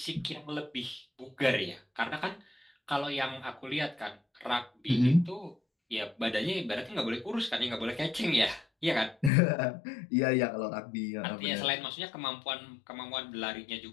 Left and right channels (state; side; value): drops out; right; at 9.3 s